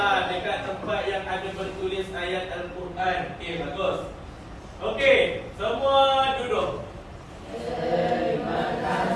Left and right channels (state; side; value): identical; both; correlation 1.00